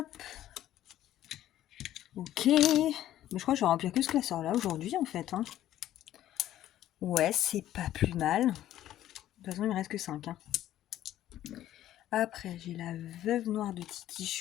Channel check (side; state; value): right; quieter; 12.9 dB